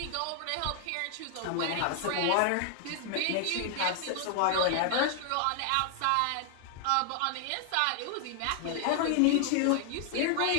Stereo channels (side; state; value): both; different; correlation 0.00